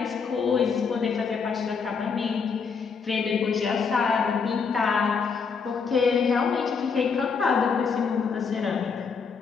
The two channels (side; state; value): right; quieter; 5.6 dB